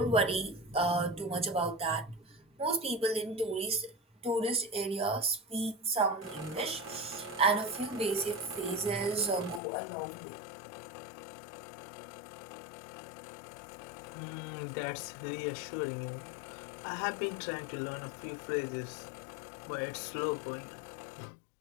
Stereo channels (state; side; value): drops out; right; at 9.6 s